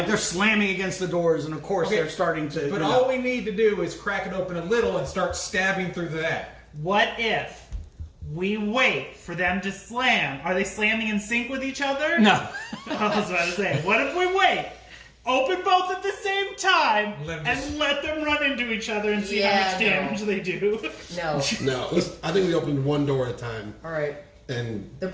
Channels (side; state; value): both; identical; correlation 1.00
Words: they're slamming against the doors, and of course Okay, they're starting to. But all we need to do is crack it open a little and start stabbing through that. What if we wait for them to slam? Are they slamming in sync with each other? No. I was about to say, what if we wait? Open both at the same time Let 'em and just- let them run into each other and see Yeah, how much damage they do. No. No, I think we opened one door at a time, All right. and They're